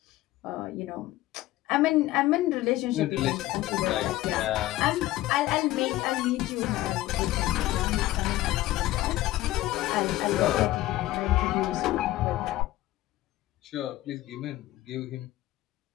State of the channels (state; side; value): quieter; right; 16.2 dB